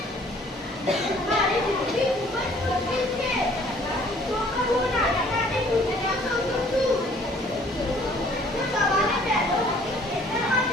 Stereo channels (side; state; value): both; normal; correlation 0.57